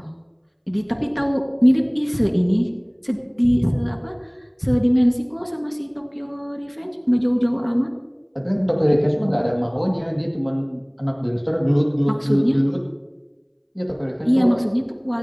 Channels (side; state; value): both; identical; correlation 1.00